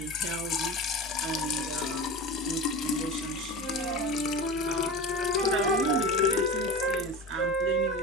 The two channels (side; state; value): both; normal; correlation 0.31